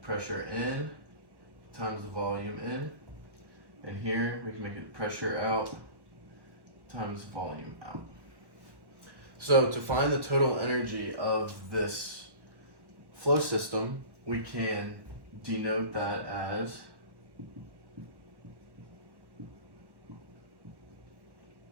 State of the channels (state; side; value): late; left; 1.1 ms